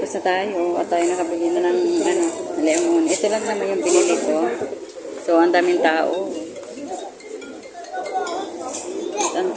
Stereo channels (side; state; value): both; identical; correlation 1.00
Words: na tayo. At tayo nakabili na ng, lemon. Ito lang naman yung binili ko. So, ang daming tao. At ang